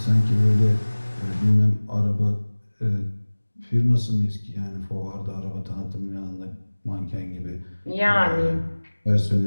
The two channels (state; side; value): inverted; both; correlation -1.00